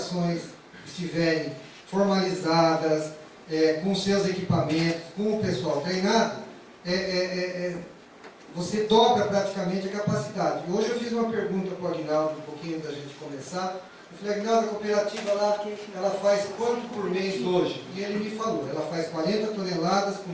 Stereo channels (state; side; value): identical; both; correlation 1.00